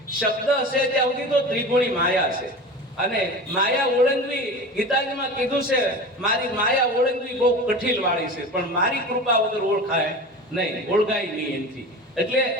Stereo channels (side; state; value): both; normal; correlation 0.32